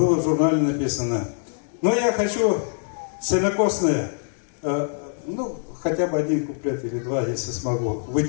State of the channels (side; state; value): right; silent; digital silence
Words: в журнале написано. Но я хочу сенокосное, ну, хотя бы один куплет или два, если смогу,